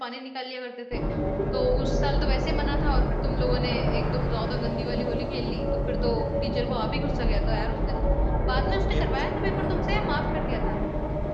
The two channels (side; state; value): both; identical; correlation 1.00